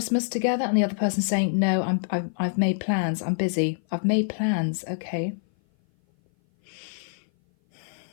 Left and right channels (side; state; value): right; silent; 57 dB below the other